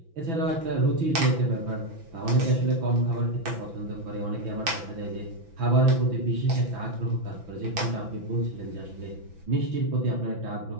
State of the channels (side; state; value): left; late; 6.0 ms